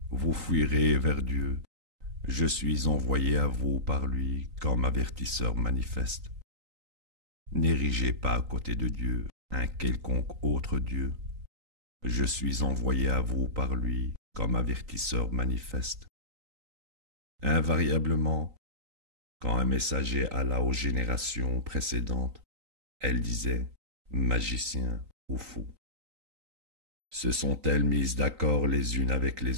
Vous fuirez vers Dieu, je suis envoyé à vous par lui comme avertisseur manifeste. N'érigez pas à côté de Dieu un quelconque autre Dieu. Je suis envoyé à vous par lui comme avertisseur manifeste. Invariablement, quand un messager alla aux générations précédentes, elle disait « magicien ou fou ». Se sont-elles mises d'accord les unes avec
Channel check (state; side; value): late; left; 3.9 ms